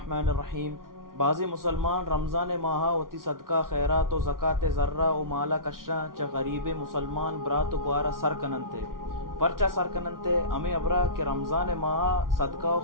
الرحیم. بعضی مسلمان رمضان ماہا وتی صدقہ خیرات و زکاة ذرہ و مالا کشا چا غریب مسلمان برات و گوارا سر کننتے پرچا سر کننتے ہمیں ابرا کہ رمضان ماہا صدقہ و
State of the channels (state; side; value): late; left; 0.91 ms